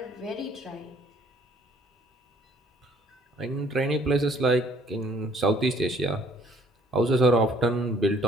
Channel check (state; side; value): normal; both; correlation 0.60